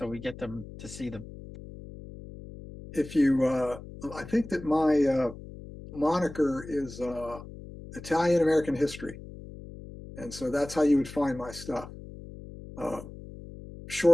we get them to see them? If you, I think that my moniker is Italian American History. And so that's how you would find my stuff.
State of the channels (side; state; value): left; noise; hum, 14 dB below the sound